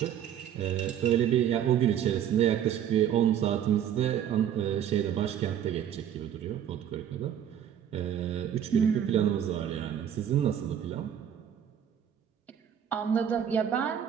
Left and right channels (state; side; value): quieter; left; 9.6 dB